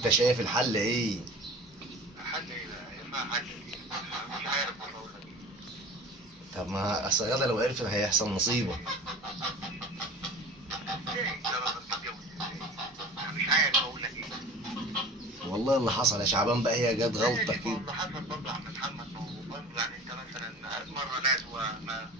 شايف الحل ايه؟ حل إيه بقى؟ ينفع حل إيه؟ مش عارف والله أقول لك إيه. طب ما اصل غاده لو عرفت هيحصل مصيبه. إزاي؟ لا بقى بتتجوز إزاي؟ أنا مش عارف أقول لك إيه. والله اللي حصل يا شعبان بقى هي جت غلطه كده. اللي حصل برضه يا عم محمد، ما هو برضه يعني أنت مثلا مرة نزوة ما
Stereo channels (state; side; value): normal; both; correlation 0.39